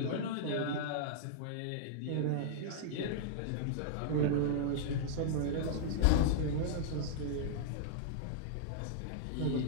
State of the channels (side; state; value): both; different; correlation -0.01